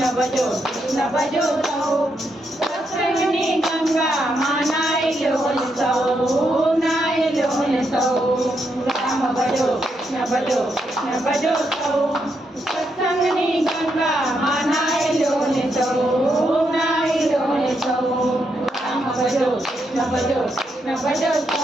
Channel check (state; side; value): normal; both; correlation 0.80